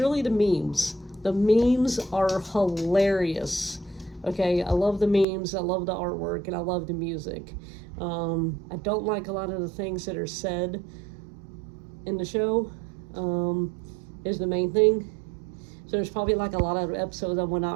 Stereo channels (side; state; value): left; drops out; at 5.2 s